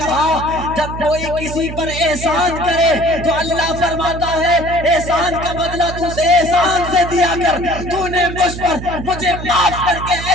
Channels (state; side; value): noise; right; hum, 9 dB below the sound